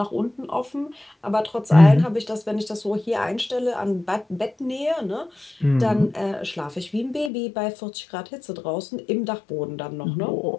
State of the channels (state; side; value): drops out; right; at 7.3 s